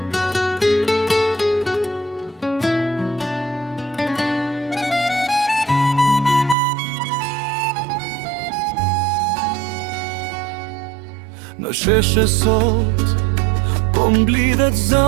sheshe sot, po mblidhet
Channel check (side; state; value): left; drops out; at 6.6 s